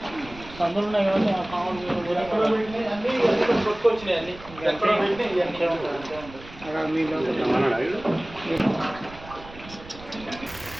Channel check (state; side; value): noise; right; rumble, 17 dB below the sound